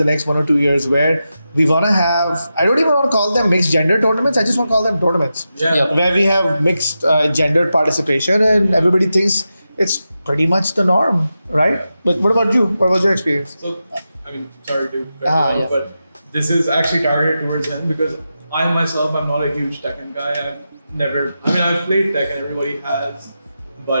next 1 or 2 years, where we want to have, I don't even want to call them mixed gender tournaments, I just want to call them tournaments. Yeah. Where we have mixed gendered participation and everybody thinks it's pretty much the norm, right? But what about you? What was your experience? So, I mean, sorry to cut you Ah, off, yeah. but this is actually targeted towards him because I myself, I'm not a huge Tekken guy. I've played Tekken, everybody has,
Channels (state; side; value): inverted; both; correlation -0.90